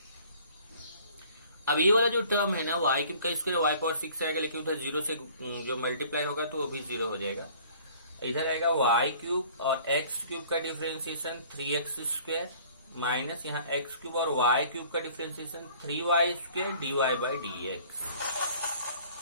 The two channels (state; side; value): inverted; both; correlation -0.52